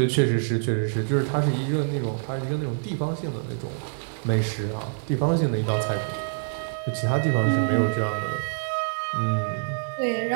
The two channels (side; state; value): left; silent; 61 dB below the other